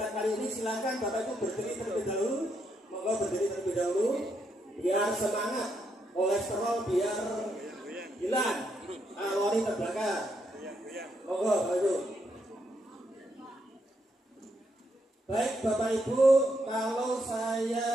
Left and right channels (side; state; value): both; normal; correlation 0.78